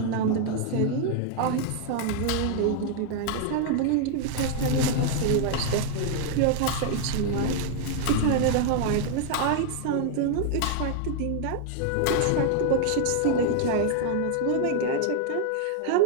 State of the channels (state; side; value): different; both; correlation 0.00